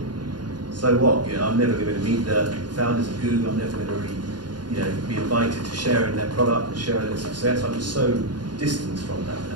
So what? You know, I'm never going to meet the founders of Google. I'm never going to be invited to share in their product and share in their success. I'm just so distant from that.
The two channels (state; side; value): late; left; 0.70 ms